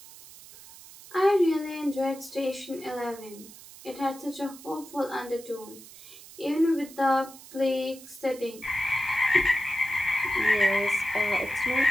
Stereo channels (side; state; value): right; noise; hiss, 18 dB below the sound